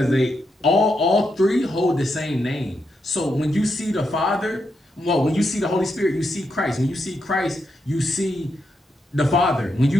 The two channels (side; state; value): both; normal; correlation 0.83